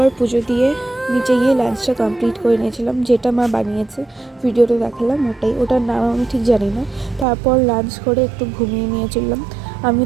পুজো দিয়ে নিচে গিয়ে লাঞ্চটা কমপ্লিট করে নিয়েছিলাম, যেটা মা বানিয়েছে ভিডিওটা দেখালাম ওটার নাম আমি ঠিক জানি না। তারপর লাঞ্চ করে একটু ঘুমিয়ে নিয়েছিলাম। আমি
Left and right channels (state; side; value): drops out; left; at 7.2 s